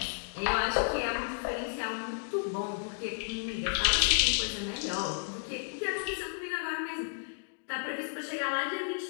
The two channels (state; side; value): silent; right; digital silence